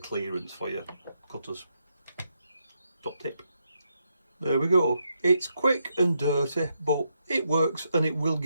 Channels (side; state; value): both; inverted; correlation -0.81